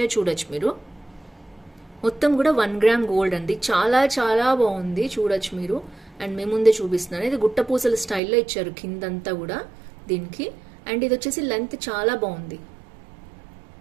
చూడొచ్చు మీరు. మొత్తం కూడా 1 గ్రామ్ గోల్డ్ అండి. చాలా చాలా బాగుంది, చూడొచ్చు మీరు. అండ్ మేము ముందే చూపిస్తున్నాను. ఇది గుట్టపూసల స్టైల్లో ఇచ్చారు కిందంతా కూడా దీనికి. అండ్ ఇది వచ్చేసి లెంత్ చాలా బాగుంది.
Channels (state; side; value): drops out; left; at 8.2 s